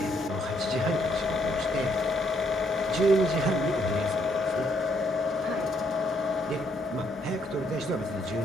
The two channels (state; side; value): normal; both; correlation 0.71